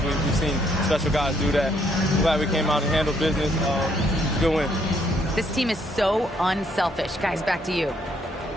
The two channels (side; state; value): both; normal; correlation 0.70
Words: we've seen special guys do that. I'm glad we came out and handled business. Good win. This team is so unselfish. Guys, back to you.